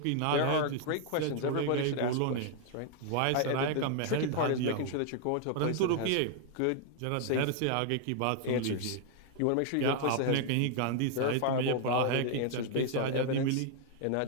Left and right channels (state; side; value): different; both; correlation 0.00